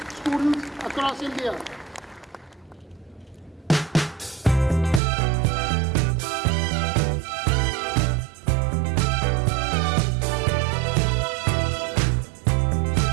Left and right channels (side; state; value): left; drops out; at 5.0 s